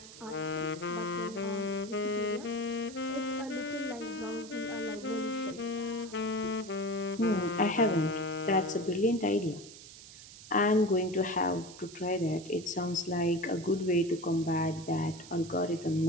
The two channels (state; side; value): noise; right; hiss, 16 dB below the sound